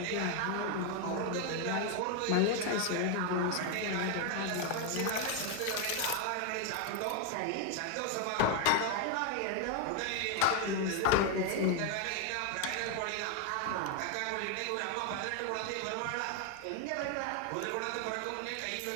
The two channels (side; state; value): both; different; correlation 0.01